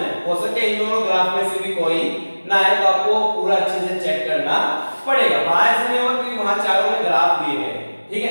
है, हो सकता है इन दोनों ग्राफ में से भी कोई ना आए, तो आपको पूरा अच्छे से चेक करना पड़ेगा, वहां ऐसे नहीं होगा क्योंकि वहां चारों में ग्राफ दिए गए हैं, ठीक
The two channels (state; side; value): inverted; both; correlation -1.00